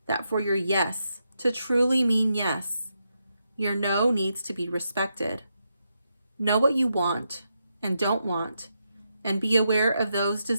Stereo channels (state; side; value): inverted; both; correlation -0.83